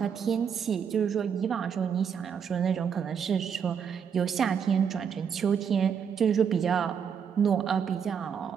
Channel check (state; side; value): quieter; left; 7.3 dB